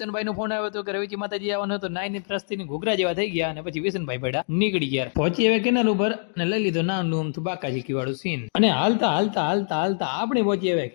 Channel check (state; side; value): silent; right; digital silence